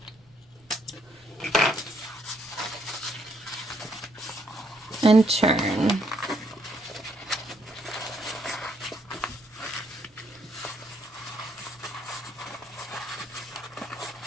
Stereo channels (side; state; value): both; normal; correlation 0.71